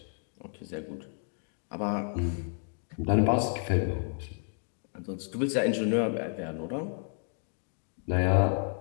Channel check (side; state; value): right; silent; 57 dB below the other